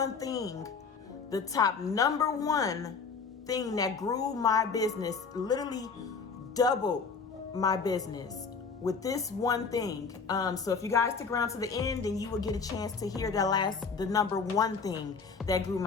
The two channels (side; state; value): right; quieter; 5.1 dB